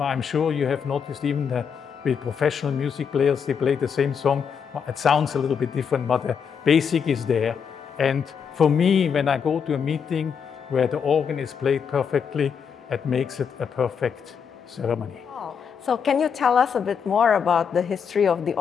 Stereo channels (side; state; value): right; quieter; 6.9 dB